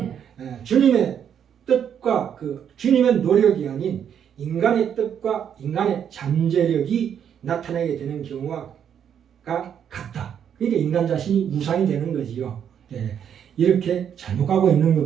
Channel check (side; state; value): left; quieter; 8.6 dB